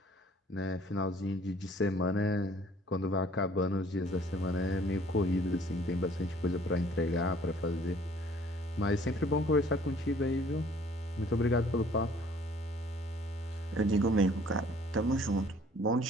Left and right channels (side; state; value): both; normal; correlation 0.56